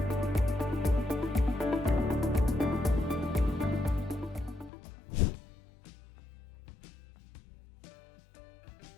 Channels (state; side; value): drops out; right; at 4.7 s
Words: Hi, I'm Sunny Weiderman from Personal Tax Advisors, here with another tax tip. This one